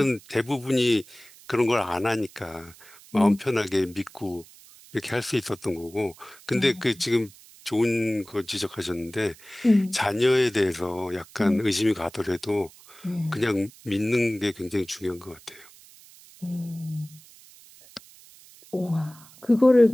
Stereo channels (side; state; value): right; noise; hiss, 23 dB below the sound